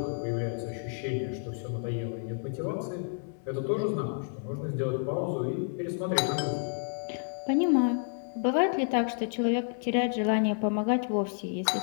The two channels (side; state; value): right; silent; digital silence